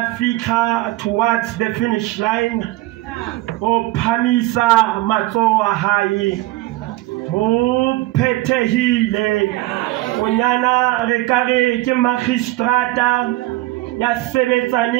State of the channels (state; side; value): quieter; left; 18.1 dB